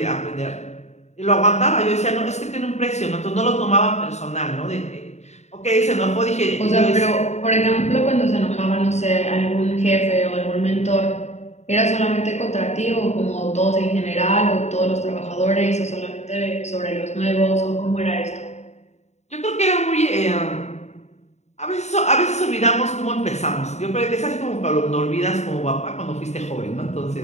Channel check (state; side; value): late; right; 0.32 ms